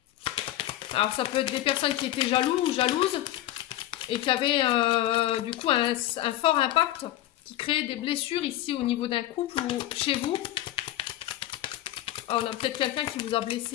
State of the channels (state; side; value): quieter; right; 14.2 dB